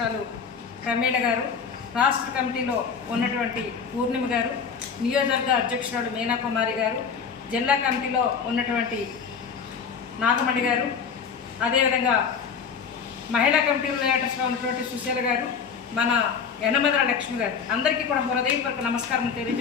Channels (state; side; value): quieter; right; 6.2 dB